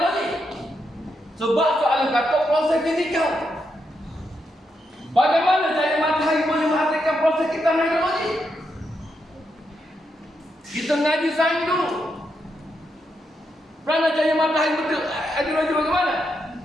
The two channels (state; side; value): normal; both; correlation 0.82